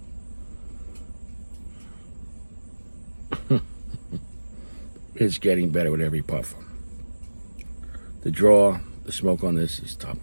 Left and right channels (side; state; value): both; inverted; correlation -1.00